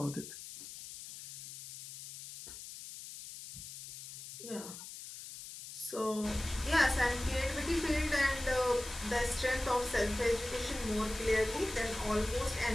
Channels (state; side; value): noise; left; hiss, 12 dB below the sound